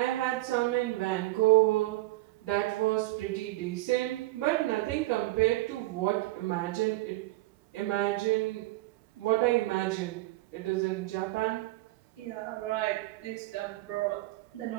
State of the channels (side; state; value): left; quieter; 19.2 dB